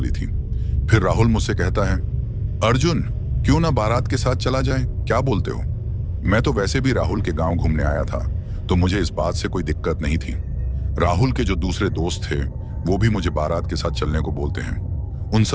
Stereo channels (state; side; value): identical; both; correlation 1.00